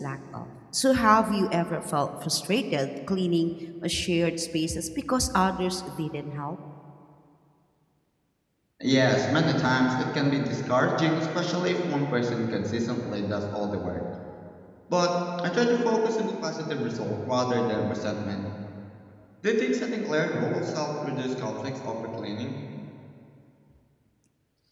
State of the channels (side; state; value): both; identical; correlation 1.00